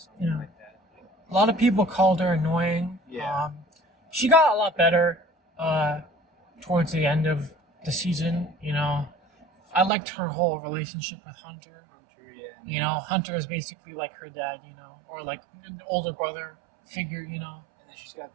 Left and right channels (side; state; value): left; drops out; at 9.9 s